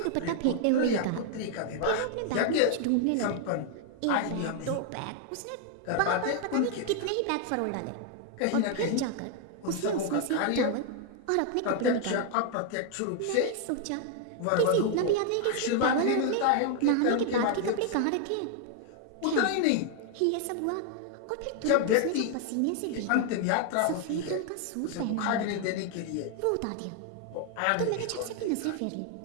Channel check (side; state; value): both; different; correlation 0.00